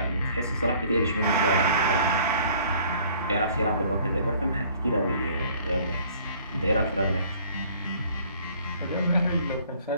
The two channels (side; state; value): both; inverted; correlation -0.55